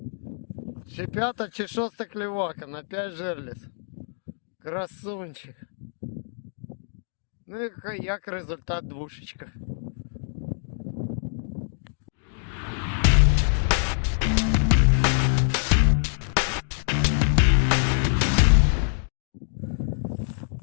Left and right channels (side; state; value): right; silent; digital silence